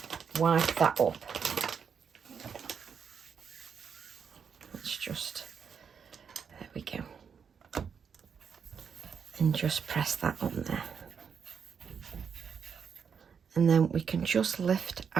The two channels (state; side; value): quieter; left; 6.7 dB